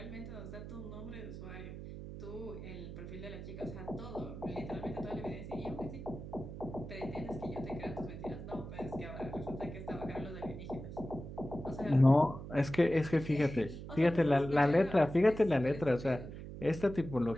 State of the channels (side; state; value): right; noise; hum, 10 dB below the sound